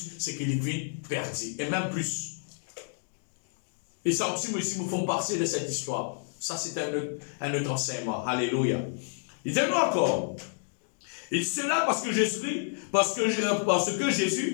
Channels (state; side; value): silent; right; digital silence